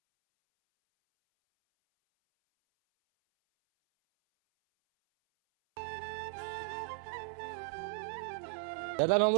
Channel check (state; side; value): silent; left; 53 dB below the other